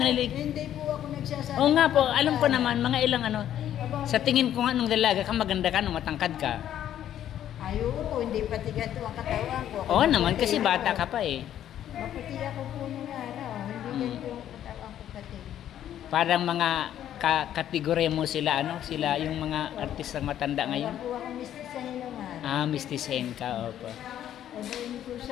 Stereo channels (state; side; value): quieter; right; 11.1 dB